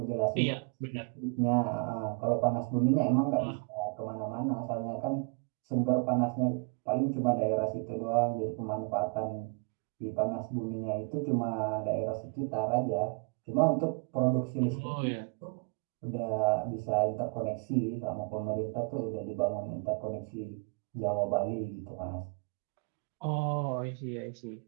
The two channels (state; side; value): quieter; left; 35.1 dB